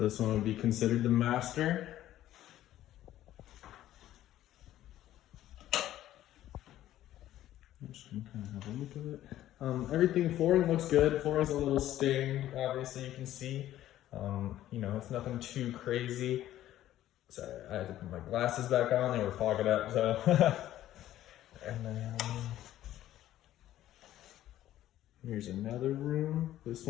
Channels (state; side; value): quieter; right; 13.3 dB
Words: this one would be considered the master. I'm just gonna kind of have a look at it. Everything, flooring looks good. Flooring's a little stained, obviously you can see. You know, it's nothing too crazy. Sorry, I had to put my glasses back on, they were fogging up, so. And then, here's another room. This